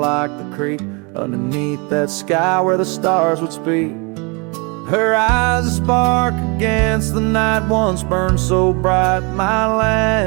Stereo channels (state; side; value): quieter; left; 30.7 dB